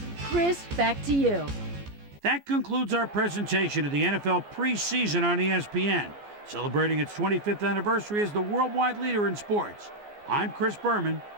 Chris, back to you. That concludes our presentation of the NFL preseason on ESPN, celebrating its 25th anniversary as the worldwide leader in sports. I'm Chris Berman.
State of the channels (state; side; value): late; left; 14 ms